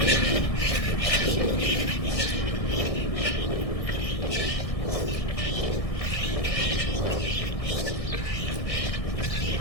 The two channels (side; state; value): right; late; 1.6 ms